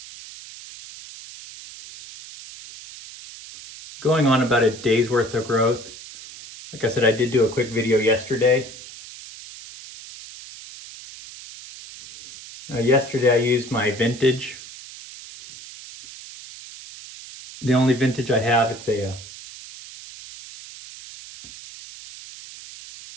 Going on about a day's worth of growth. Like I said, I did do a quick video yesterday. Yesterday I used my vintage. The only vintage I have, it's a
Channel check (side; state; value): right; noise; hiss, 16 dB below the sound